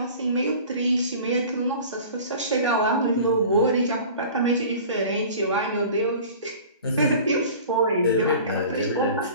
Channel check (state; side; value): inverted; both; correlation -0.42